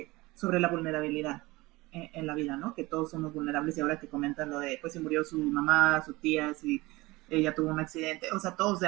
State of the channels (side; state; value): left; quieter; 21.3 dB